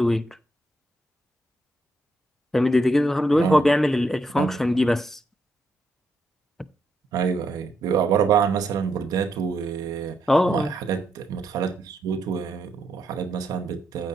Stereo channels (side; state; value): both; normal; correlation 0.79